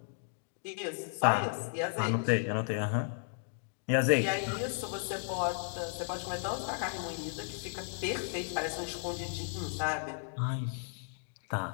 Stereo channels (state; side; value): silent; right; digital silence